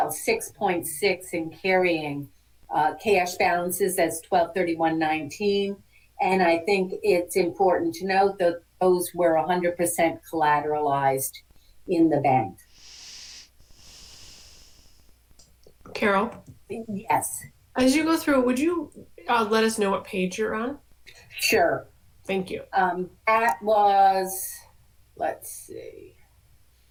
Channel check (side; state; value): both; identical; correlation 1.00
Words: in carrying cash balances as 12/31/19. And I think it's important to note that those were 100% collateralized in the bank. Carol, Yes, as you go through, would you let us know what page you're on? sure. Thank you. That was, let's see,